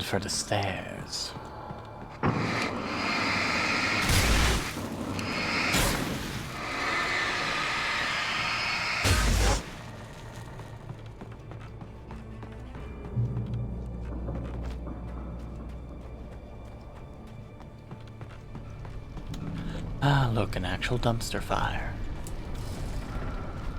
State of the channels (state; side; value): identical; both; correlation 1.00